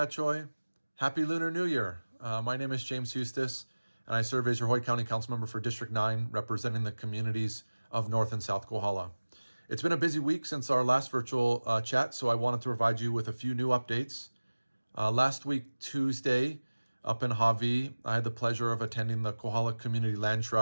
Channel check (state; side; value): inverted; both; correlation -1.00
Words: Choi. Happy Lunar New Year. My name is James Hustace, and I serve as your Hawaii County Council Member for District 9, representing the communities of North and South Kohala. It's been a busy week since our last virtual chat, so I wanted to provide you with a few new updates. Last week, Tuesday, up in Hawaii, I had the pleasure of attending the Kohala Community Land